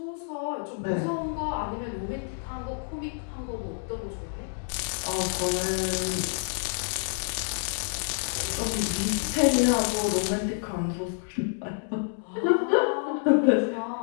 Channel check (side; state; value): right; silent; 59 dB below the other